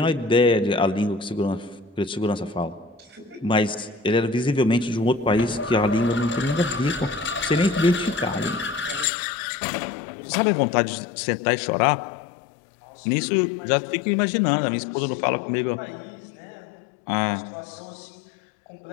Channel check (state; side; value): drops out; right; at 9.1 s